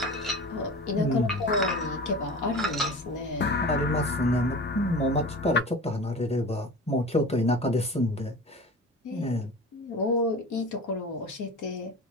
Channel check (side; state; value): both; normal; correlation 0.34